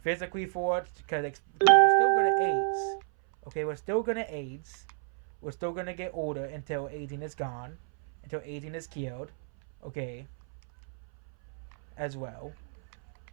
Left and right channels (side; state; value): left; silent; 57 dB below the other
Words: physically for it because we're still going to age. Okay, we're still going to age. We're still going to get older until aging is gone, until aging is killed. Okay, as well.